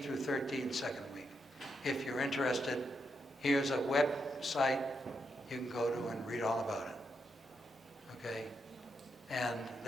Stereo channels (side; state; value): both; normal; correlation 0.82